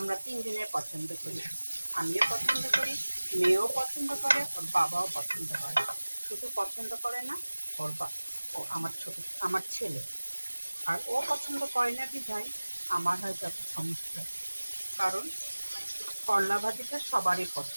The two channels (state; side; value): inverted; both; correlation -1.00